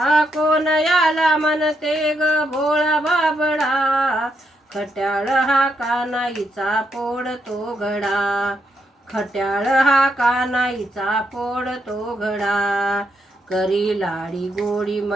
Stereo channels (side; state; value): both; normal; correlation 0.79